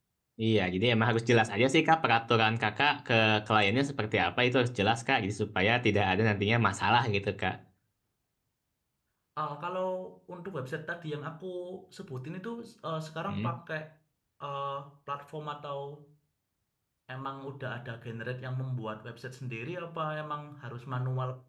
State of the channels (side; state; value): both; identical; correlation 1.00